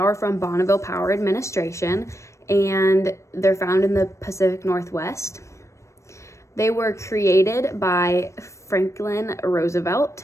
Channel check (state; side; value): late; right; 0.14 ms